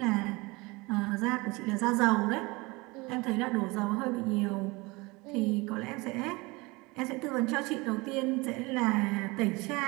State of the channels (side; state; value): left; quieter; 24.5 dB